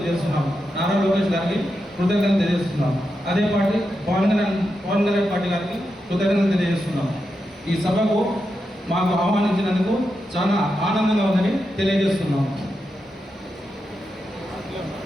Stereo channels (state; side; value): normal; both; correlation 0.87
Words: నారా లోకేష్ గారికి కృతజ్ఞతలు తెలియజేస్తున్నాం. అదే పార్టీ పవన్ కళ్యాణ్ పార్టీ గారికి కృతజ్ఞతలు తెలియజేస్తున్నాం. ఈ సభకు మాకు ఆహ్వానించినందుకు చాలా ఆనందంగా ఉందని తెలియజేస్తున్నాం.